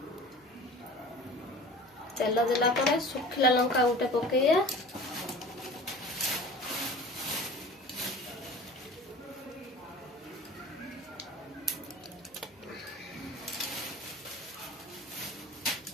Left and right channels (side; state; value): both; normal; correlation 0.40